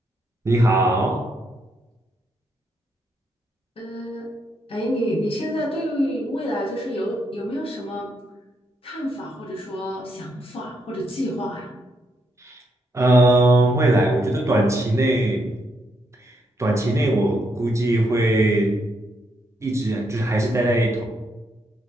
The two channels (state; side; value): normal; both; correlation 0.78